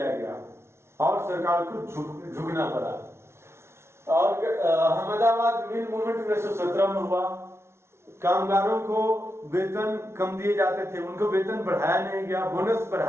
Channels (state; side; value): late; left; 0.13 ms